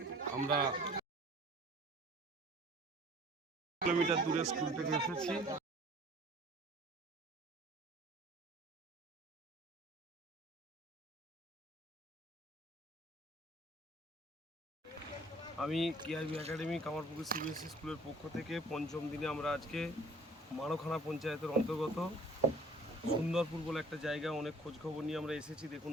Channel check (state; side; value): normal; both; correlation 0.51